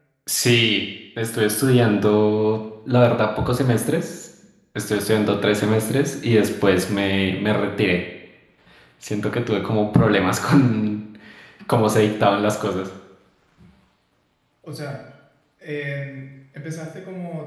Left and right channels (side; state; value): both; identical; correlation 1.00